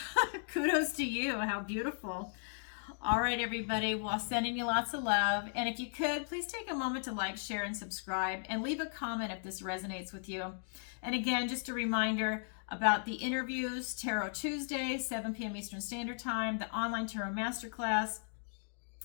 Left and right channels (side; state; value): right; silent; digital silence